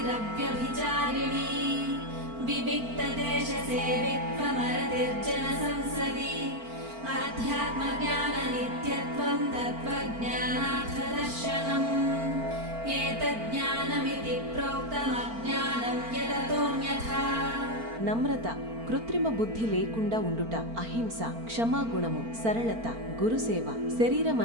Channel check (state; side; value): late; left; 4.4 ms